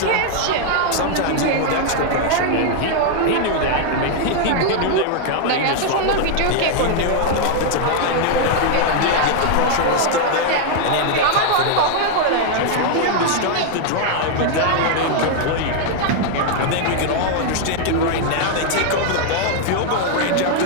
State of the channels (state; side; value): different; both; correlation 0.00